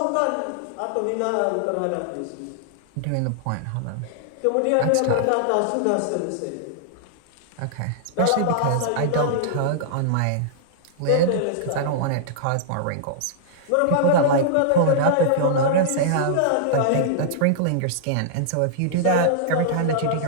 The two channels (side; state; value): both; different; correlation -0.02